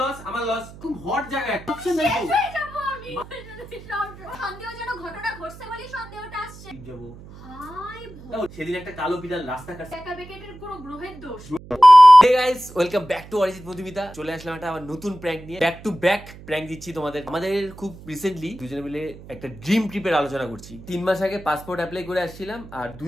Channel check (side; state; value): right; noise; hum, 18 dB below the sound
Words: লস, আমার লস। খুব হট জায়গা একটা অপশন নাই তো। সন্দেহজনক ঘটনা ঘটছে বলি সন্দেহটা আসছে। যাব হাই সেদিন একটা কালো বিড়াল রাস্তা কাটছে। একা বেকেটের পুরো গ্রহের দোষ। Hey guys, welcome back to Arijit Madhumita. চলে আসলাম একটা আবার নতুন প্র্যাঙ্ক নিয়ে। ব্যাক টু ব্যাক প্র্যাঙ্ক দিচ্ছি তোমাদের। আমাদের খুব রিসেন্টলি দুজনে মিলে একটা ড্রিম ট্রিপের আলোচনা করছি। 3 মাস আগে পাসপোর্ট অ্যাপ্লাই করে আসছিলাম, আর 2